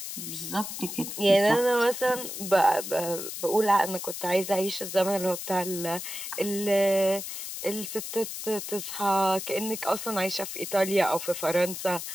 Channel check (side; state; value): left; noise; hiss, 7 dB below the sound